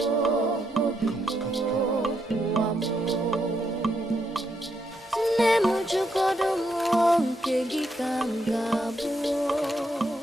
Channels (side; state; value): both; normal; correlation 0.79